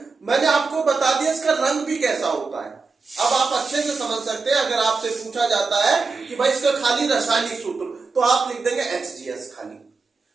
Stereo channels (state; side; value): quieter; left; 4.3 dB